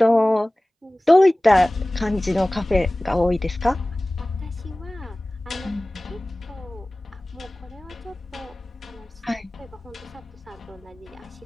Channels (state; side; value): normal; both; correlation 0.98